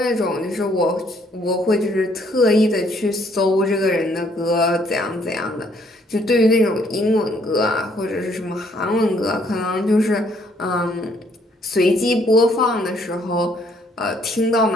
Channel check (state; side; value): normal; both; correlation 0.66